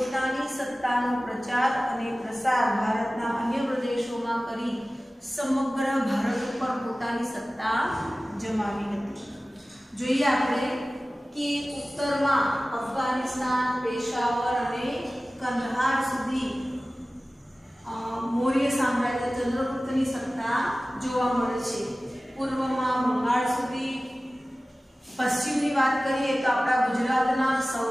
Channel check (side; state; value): both; normal; correlation 0.97